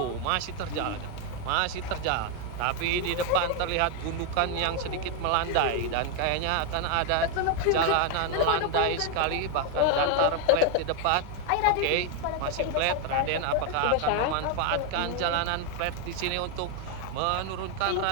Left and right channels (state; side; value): different; both; correlation 0.01